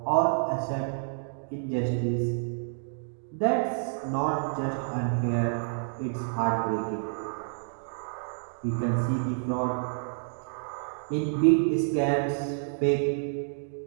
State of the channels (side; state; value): left; silent; digital silence